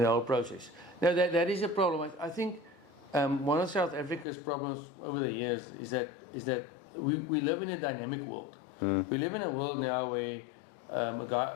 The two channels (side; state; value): right; drops out; at 4.2 s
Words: whole process. Now that is a problem. I think one of South Africa's problems over the years is that we live in a dynamic world. We live in a world now where